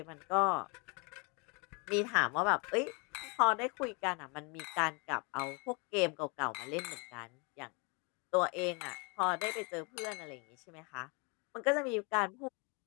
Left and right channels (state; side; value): quieter; right; 32.0 dB